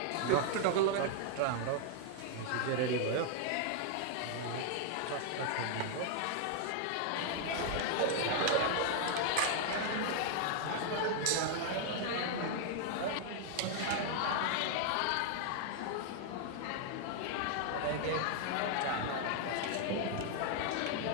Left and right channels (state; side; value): different; both; correlation 0.00